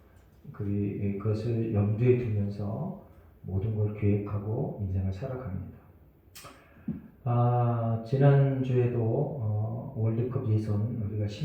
그것을 염두에 두면서 모든 걸 계획하고 인생을 살아갑니다. 지난주에도 월드컵 예선 우리가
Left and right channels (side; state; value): both; identical; correlation 1.00